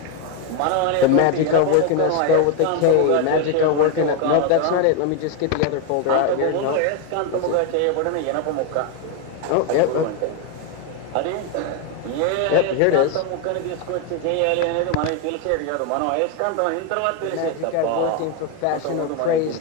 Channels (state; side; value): different; both; correlation 0.02